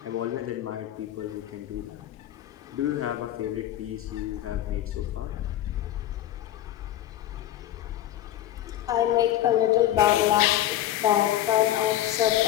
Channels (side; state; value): right; quieter; 12.9 dB